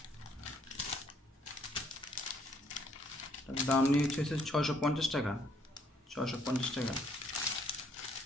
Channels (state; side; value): normal; both; correlation 0.66